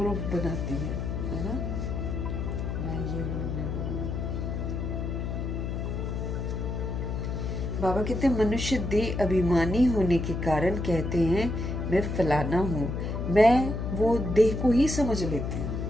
बनाती है ना, मैं ये हूँ मैं वो हूँ। बाबा कहते हैं मनुष्य देह अभिमानी होने के कारण कहते हैं मैं फलाना हूँ, मैं वो देह को ही समझ लेती हूँ।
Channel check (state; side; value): noise; left; hum, 3 dB below the sound